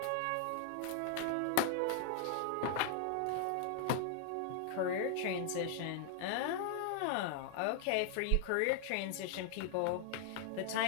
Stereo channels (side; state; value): both; different; correlation 0.00